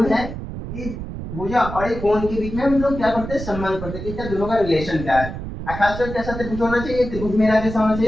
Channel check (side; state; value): right; noise; rumble, 8 dB below the sound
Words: है, ये भुजा और एक कोण के बीच में हम लोग क्या करते हैं? संबंध करते हैं। इसका दोनों का रिलेशन क्या है? खासकर कैसा त्रिभुज होना चाहिए? त्रिभुज मेरा कैसा होना